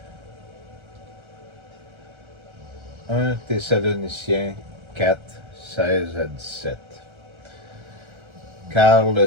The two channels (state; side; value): late; left; 1.3 ms